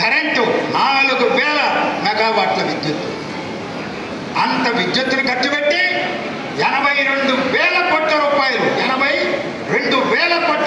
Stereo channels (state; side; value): identical; both; correlation 1.00